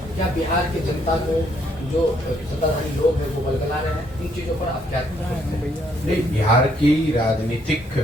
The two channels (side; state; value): both; normal; correlation 0.70